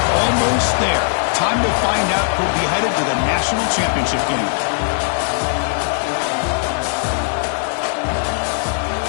almost there. Time to find out who'll be headed to the national championship game.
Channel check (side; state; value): right; silent; digital silence